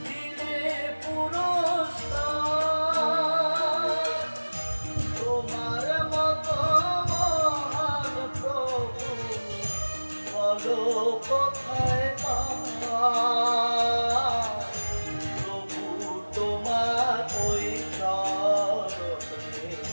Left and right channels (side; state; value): both; inverted; correlation -1.00